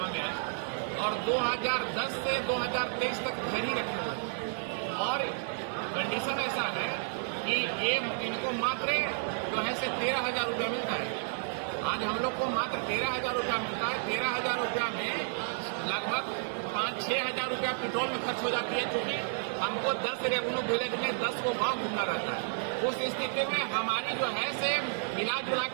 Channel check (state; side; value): silent; left; digital silence